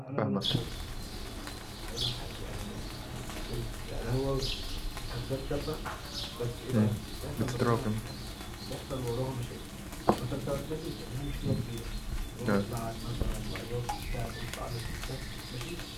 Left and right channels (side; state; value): both; identical; correlation 1.00